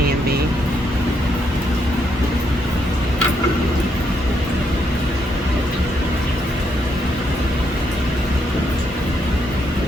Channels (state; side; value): normal; both; correlation 0.77